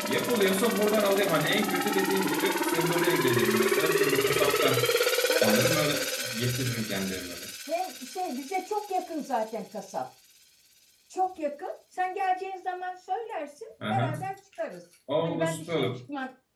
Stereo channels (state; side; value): identical; both; correlation 1.00